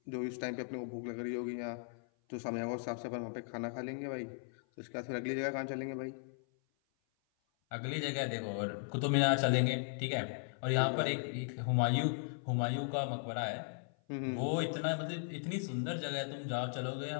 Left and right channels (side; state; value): right; silent; 53 dB below the other